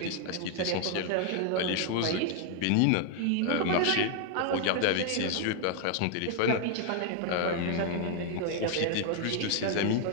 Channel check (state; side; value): different; both; correlation 0.00